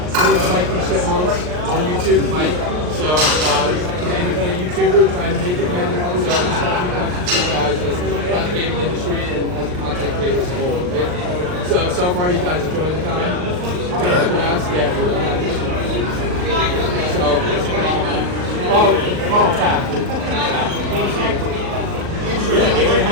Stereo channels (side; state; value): left; late; 39 ms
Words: Mike from Chipmunks on YouTube, Mike. So, he's an independent YouTuber trying to make it again. So, I just have a few questions for you guys just about the gaming industry and as a content creator as a whole, right? So far, you guys enjoying the con? Good. Yeah, tap. Yeah,